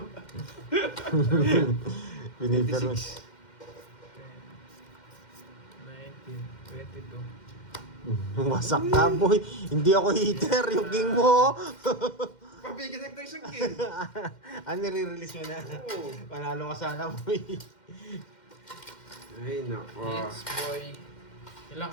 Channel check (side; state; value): right; late; 2.1 ms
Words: Binibiro. 26. 19, 22. Wasak ka, boy. Hindi ako heater. Yung king mo. Pabigyan tayo isang king. Nire-release mo na. Oo. Panalo ka sana, boy. Ay, nako. Hits, boy. Ilan